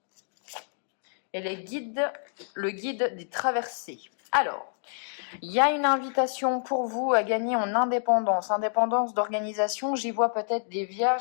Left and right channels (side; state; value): right; silent; digital silence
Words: Et le guide des traversées. Alors, il y a une invitation pour vous à gagner en indépendance. Indépendance d'organisation, j'y vois peut-être des